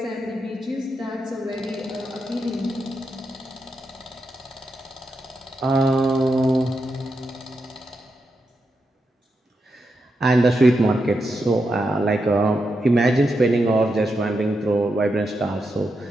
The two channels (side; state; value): both; normal; correlation 0.85